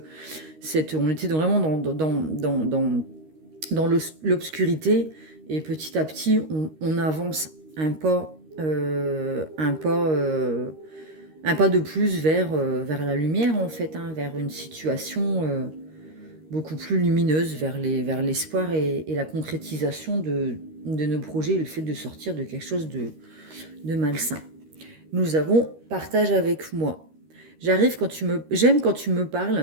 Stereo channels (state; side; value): late; left; 13 ms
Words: on était vraiment dans l'obscurité et petit à petit on avance un pas de plus vers la lumière en fait, hein, vers une situation beaucoup plus lumineuse, vers l'espoir et la concrétisation de nos projets, le fait de sortir de quelque chose de malsain. Nous avons partage avec moi. J'aime quand tu me